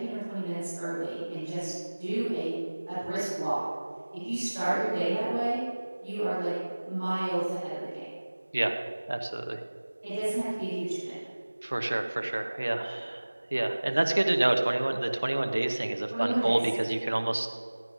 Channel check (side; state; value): both; inverted; correlation -1.00